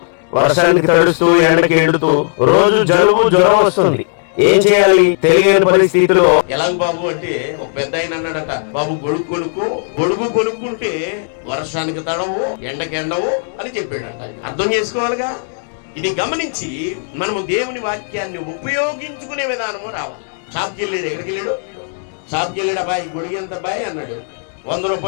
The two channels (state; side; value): silent; right; digital silence